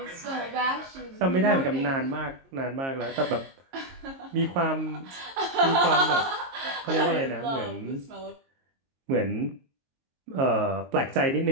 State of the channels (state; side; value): late; left; 22 ms